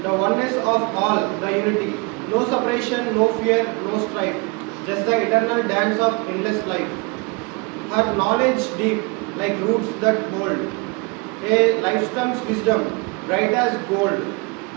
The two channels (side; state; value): left; quieter; 29.0 dB